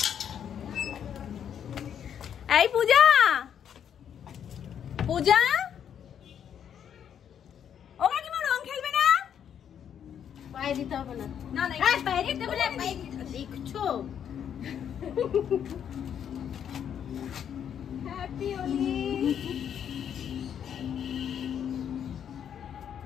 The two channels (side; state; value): right; quieter; 8.8 dB